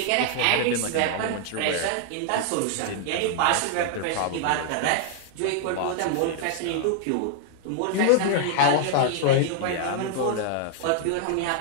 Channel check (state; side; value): different; both; correlation 0.00